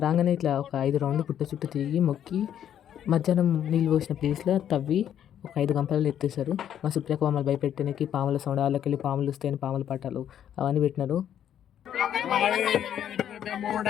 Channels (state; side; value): quieter; right; 10.0 dB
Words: రాగానే ఇట్లా ఒక 5 రౌండ్లు పుట్ట చుట్టూ తిరిగి మొక్కి మధ్యాహ్నం నీళ్ళు పోసిన ప్లేస్లో తవ్వి ఒక 5 గంపలలో ఎత్తేసారు. మా సుప్రియకు మమ్మల్ని భయపెట్టడానికి పాముల సౌండ్, వాళ్ళకి వెళ్ళి పాములు వస్తాయని పాముల పట్టాలు అవన్నీ పెట్టినారు.